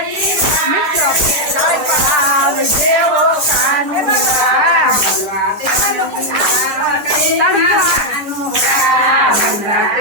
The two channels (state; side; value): late; left; 10 ms